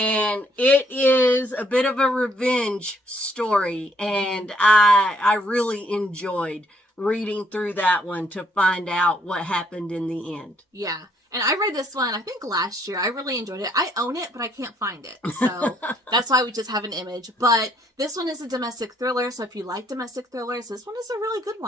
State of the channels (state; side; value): normal; both; correlation 0.68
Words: it is a bit of a revenge story. And I really enjoyed reading through that one to find out what happened in the end. Yeah. And I read this one, I think last year. I really enjoyed it. I own it, but I can't find it. So that's why we just have an image. But this one is a domestic thriller. So if you like domestic thrillers, this one is a really good